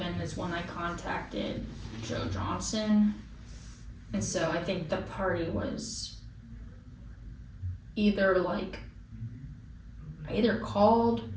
is when I contacted Joe Johnson. And so I think the party was either like, I either called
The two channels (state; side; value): identical; both; correlation 1.00